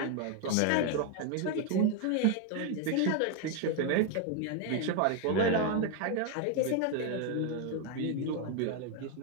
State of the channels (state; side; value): different; both; correlation 0.01